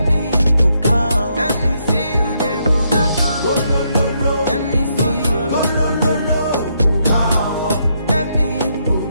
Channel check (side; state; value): both; inverted; correlation -0.76